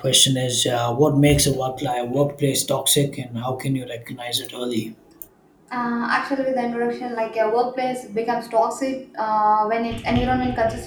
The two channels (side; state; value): both; identical; correlation 1.00